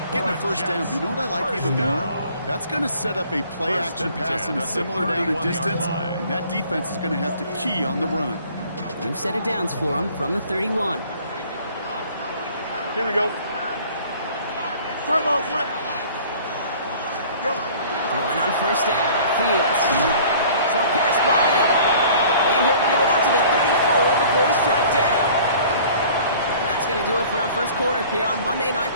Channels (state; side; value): inverted; both; correlation -0.50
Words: getting a first down, but you know what I like even more? That's going to set up a play-action pass in a similar down and distance, and that defense is going to have to key on the run. New set of downs for him from the 31. Here we go. Turn ball, tonight. Go. Throwing on first down. Fields. Short pass Bryant. And he'll give it out to the 34 before he's tracked down. That's going to do it for our first quarter here on Monday Night